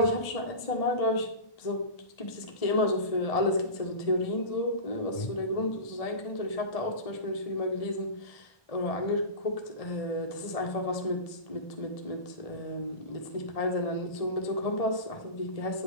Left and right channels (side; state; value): right; late; 1.7 ms